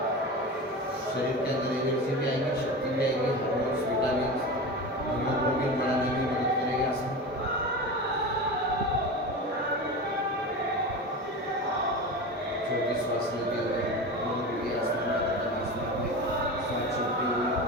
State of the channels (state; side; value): normal; both; correlation 0.27